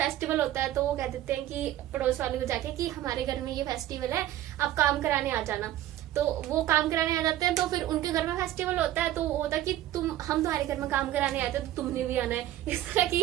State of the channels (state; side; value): quieter; left; 13.6 dB